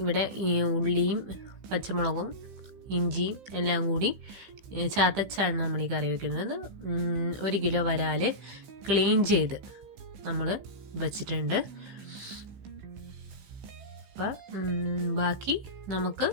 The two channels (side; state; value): left; late; 15 ms